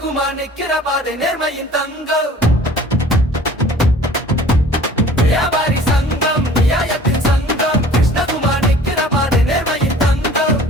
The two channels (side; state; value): both; normal; correlation 0.48